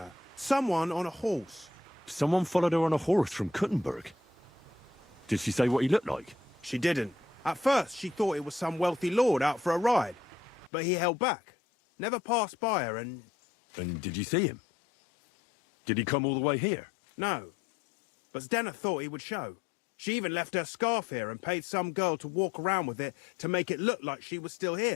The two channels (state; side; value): drops out; right; at 10.7 s